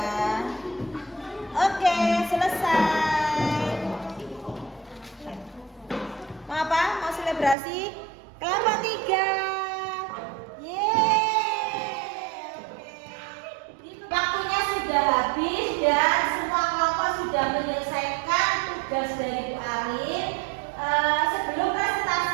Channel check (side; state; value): left; drops out; at 7.6 s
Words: Oke, selesai. Mau apa? Mau selebrasi? Kelompok 3. Yeay. Oke. Waktunya sudah habis dan semua kelompok sudah menyelesaikan tugas dari Bu Arin. Sebelum